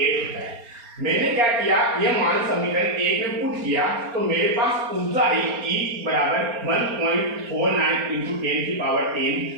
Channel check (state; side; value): late; left; 4.3 ms